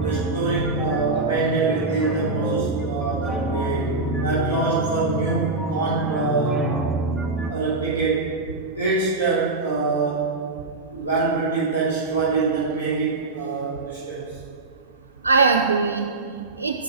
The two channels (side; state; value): left; quieter; 3.4 dB